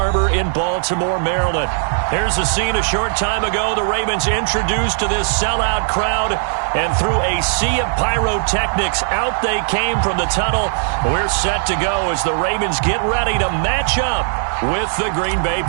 in Baltimore, Maryland. Here's the scene a short time ago. The Ravens introduced to this sellout crowd, and through a sea of pyrotechnics, out they came from the tunnel. We're set to go as the Ravens get ready to match up with the Green Bay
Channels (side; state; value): left; silent; digital silence